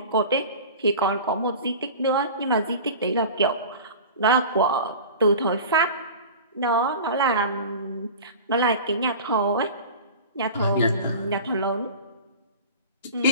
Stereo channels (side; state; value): both; inverted; correlation -0.36